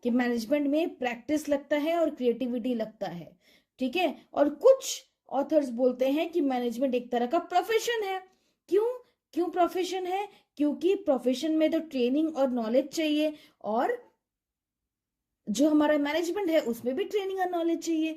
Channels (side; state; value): both; identical; correlation 1.00